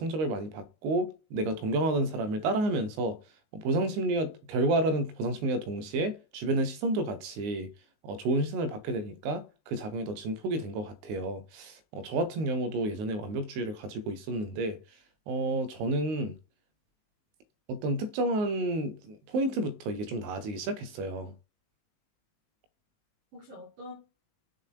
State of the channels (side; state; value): left; late; 19 ms